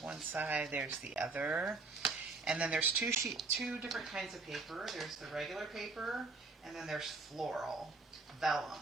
one side, there's the other. And then there's two different kinds of paper. There's the regular paper, and then there's floral, vellum,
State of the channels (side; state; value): left; quieter; 3.7 dB